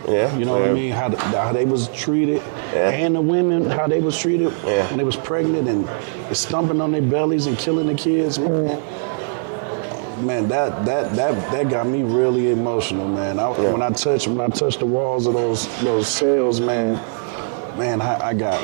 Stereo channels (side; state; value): left; silent; 60 dB below the other